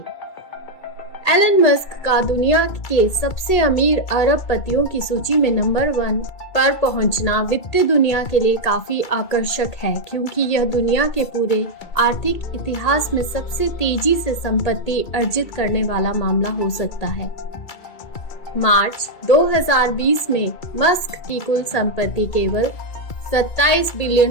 एलन मस्क का दुनिया के सबसे अमीर अरबपतियों की सूची में नंबर 1 पर पहुंचना वित्तीय दुनिया के लिए काफी आकर्षक है, क्योंकि यह दुनिया के पूरे आर्थिक इतिहास में सबसे तेजी से संपत्ति अर्जित करने वाला मामला हो सकता है। मार्च 2020 में मस्क की कुल संपत्ति केवल $27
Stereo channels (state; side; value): late; right; 2.3 ms